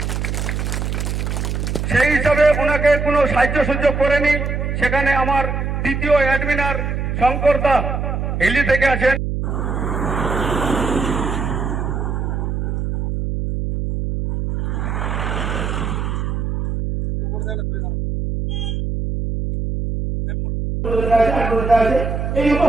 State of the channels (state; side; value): noise; right; hum, 2 dB below the sound